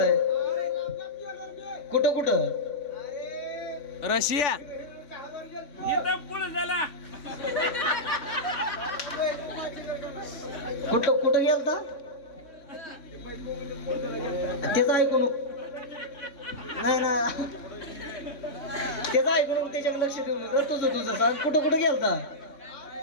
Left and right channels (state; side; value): late; right; 3.4 ms